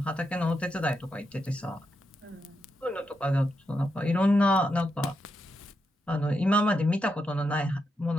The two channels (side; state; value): both; normal; correlation 0.84